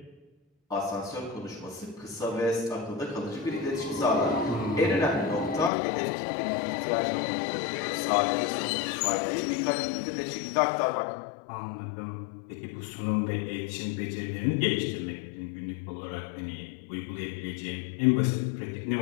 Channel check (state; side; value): drops out; right; at 5.7 s